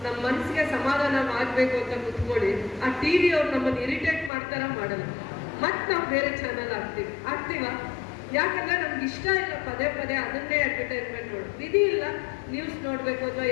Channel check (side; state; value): right; drops out; at 4.3 s